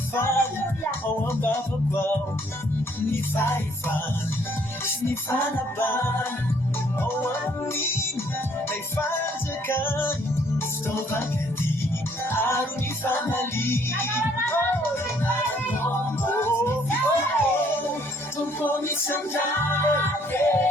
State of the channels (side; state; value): both; normal; correlation 0.64